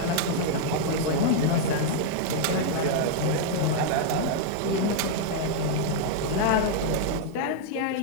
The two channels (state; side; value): different; both; correlation -0.01